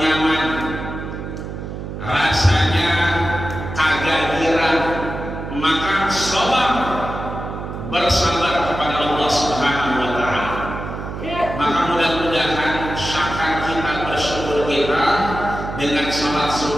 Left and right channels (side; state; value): right; noise; hum, 8 dB below the sound